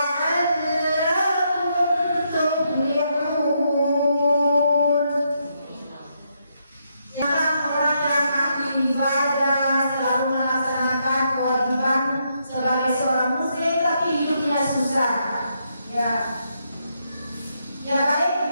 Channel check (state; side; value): inverted; both; correlation -0.78